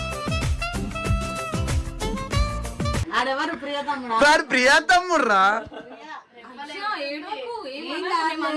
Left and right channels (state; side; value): identical; both; correlation 1.00